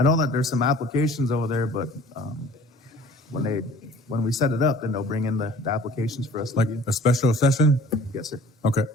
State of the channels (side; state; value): both; normal; correlation 0.49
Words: know that there's some applications over there, but when we set it up, then they'll bring in the applications for us to Like review. a special session? Yes, sir. Okay.